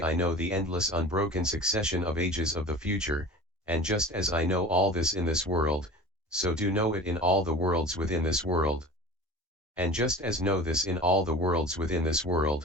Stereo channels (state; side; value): normal; both; correlation 0.38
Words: I know the endless unbroken succession of ages of the future, and just as I know all this in this world, so do know it in all the worlds within this world. And just as know this in all the worlds within this